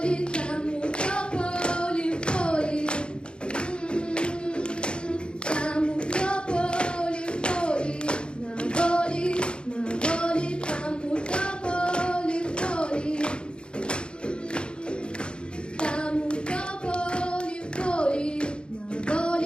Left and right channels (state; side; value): late; right; 0.053 ms